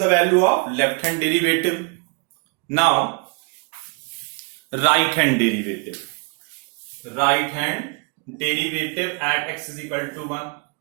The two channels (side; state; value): left; quieter; 34.1 dB